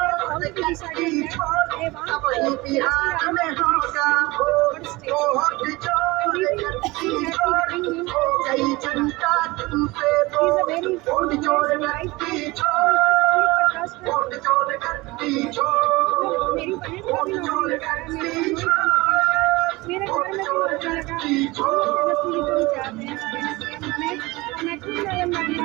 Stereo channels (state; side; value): quieter; left; 22.0 dB